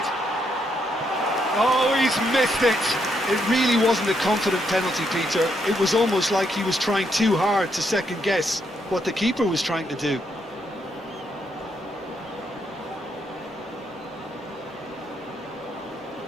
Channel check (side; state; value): both; normal; correlation 0.77